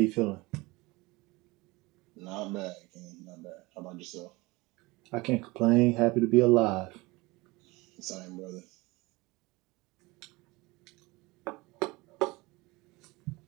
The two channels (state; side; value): quieter; left; 22.9 dB